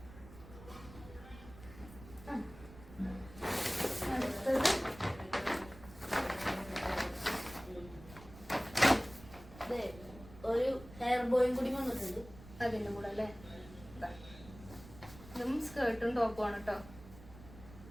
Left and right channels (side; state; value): right; noise; rumble, 17 dB below the sound